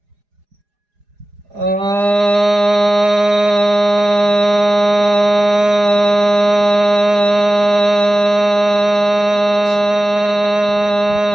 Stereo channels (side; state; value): left; late; 4.9 ms